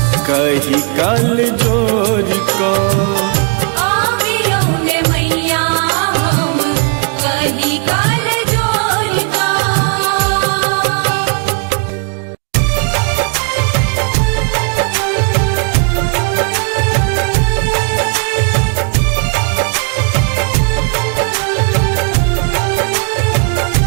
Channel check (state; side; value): quieter; left; 37.1 dB